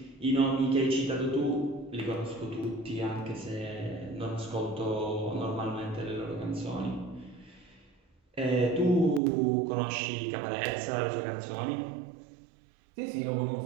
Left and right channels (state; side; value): drops out; left; at 9.2 s